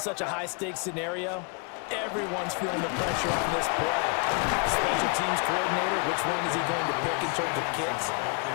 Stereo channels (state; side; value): quieter; right; 35.1 dB